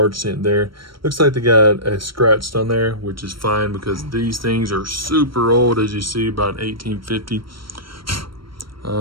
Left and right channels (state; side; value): late; left; 0.74 ms